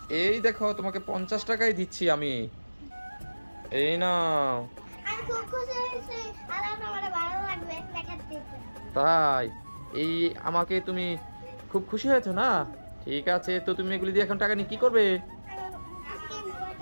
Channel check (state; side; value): inverted; both; correlation -1.00